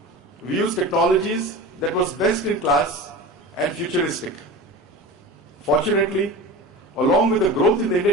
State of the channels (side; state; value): both; normal; correlation 0.32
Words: We used technologies that was best in class and futuristic. Fortunately, along with the growth in the